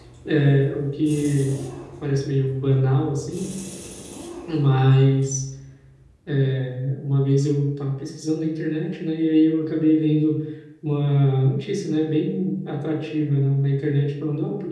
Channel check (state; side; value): identical; both; correlation 1.00